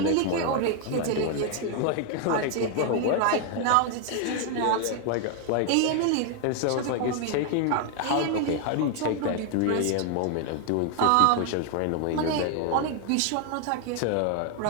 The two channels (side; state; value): both; different; correlation 0.00